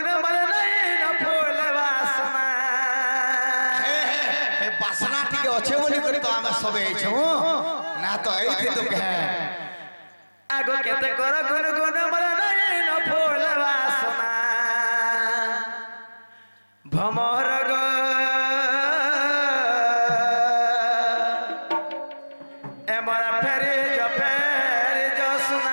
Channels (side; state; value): both; inverted; correlation -1.00